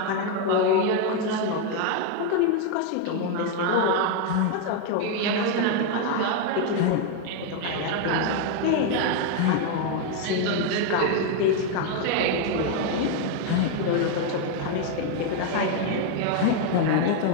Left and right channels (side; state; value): both; different; correlation 0.01